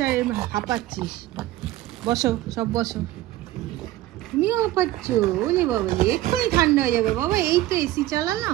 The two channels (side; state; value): left; quieter; 15.4 dB